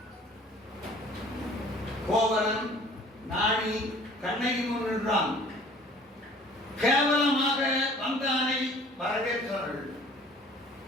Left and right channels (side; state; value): both; normal; correlation 0.51